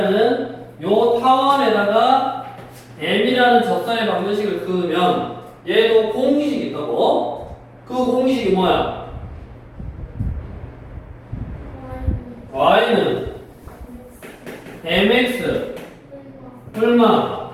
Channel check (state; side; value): identical; both; correlation 1.00